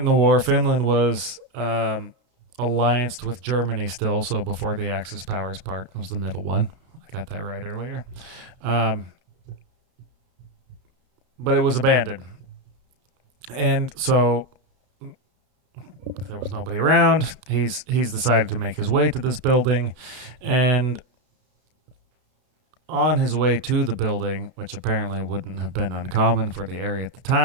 the war, Finland was allianced with Germany still. So before the Axis powers part was the middle one. I got that right earlier. But it was abandoned. And so there was nobody around. He's decided to make his way to this building, and on his way to the building, which apparently wouldn't have been uncommon for the area at the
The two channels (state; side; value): late; left; 32 ms